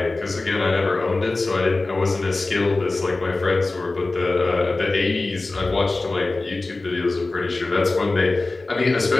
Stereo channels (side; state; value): right; quieter; 3.3 dB